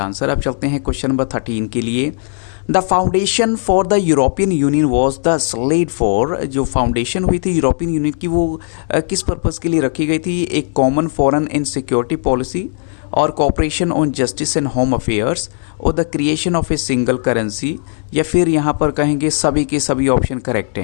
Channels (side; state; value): right; silent; 61 dB below the other